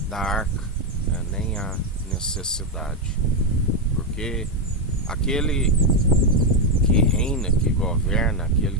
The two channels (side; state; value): both; normal; correlation 0.05